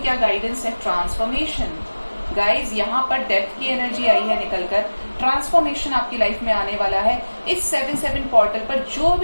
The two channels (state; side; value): inverted; both; correlation -1.00